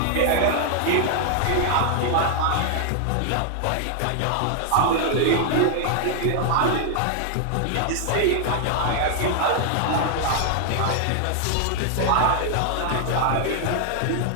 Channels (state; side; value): different; both; correlation 0.00